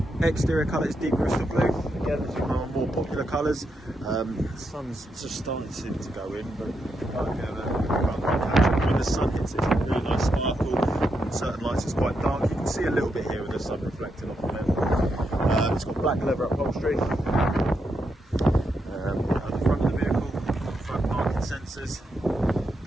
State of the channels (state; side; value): normal; both; correlation 0.82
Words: Exterior colour is deep crystal blue. Again, it's one of our more popular colours. The sun's just starting to go in, but when the sun hits it's a really nice sparkle. On certain lights it's quite dark. You can see a little bit here with the sun reflecting off on it. It's got black leather upholstery. Sensors,